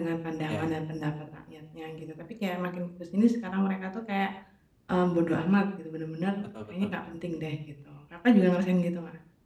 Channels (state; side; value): identical; both; correlation 1.00